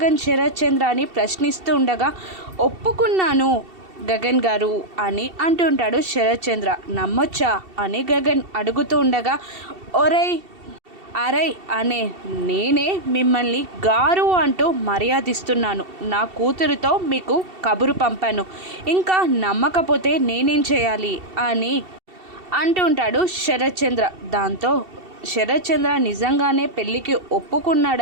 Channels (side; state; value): left; late; 2.7 ms